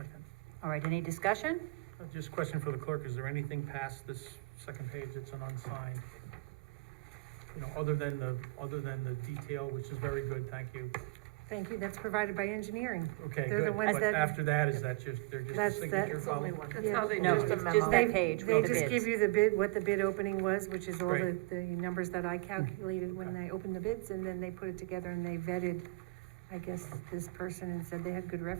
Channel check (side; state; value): left; quieter; 24.3 dB